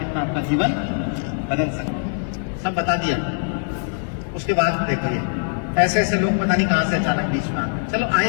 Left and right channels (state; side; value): silent; right; 64 dB below the other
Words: आपका जीवन बदल सकता है। सब बता दिया। उसके बाद देखो, ये ऐसे ऐसे लोग पता नहीं कहां से अचानक बीच में आते। चलो